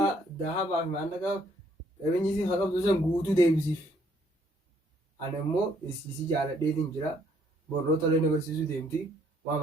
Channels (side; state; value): both; normal; correlation 0.66